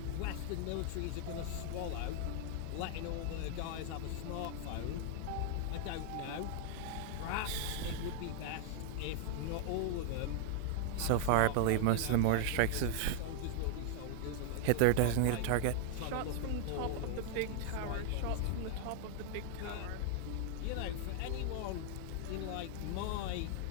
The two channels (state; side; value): different; both; correlation 0.00